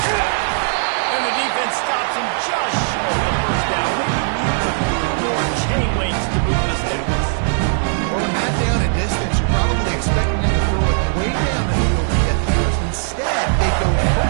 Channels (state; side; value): silent; left; digital silence